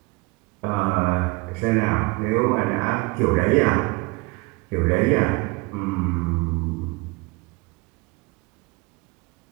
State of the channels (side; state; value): left; quieter; 26.3 dB